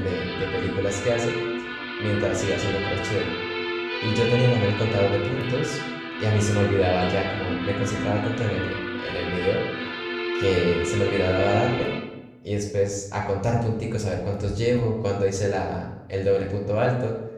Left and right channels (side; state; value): both; identical; correlation 1.00